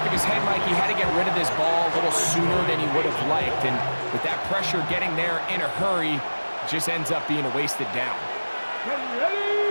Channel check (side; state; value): both; inverted; correlation -1.00